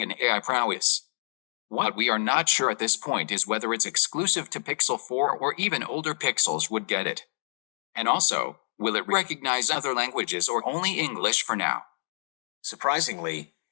and AI prowess. What we are not sure at this point is whether it's exclusive to Pixel 4 or even older Pixels would get it. And also, will it recognize other languages or only English for now? Surprisingly,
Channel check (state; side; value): silent; right; digital silence